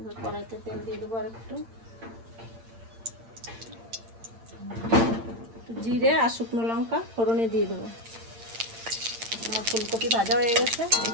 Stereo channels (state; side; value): late; left; 8.8 ms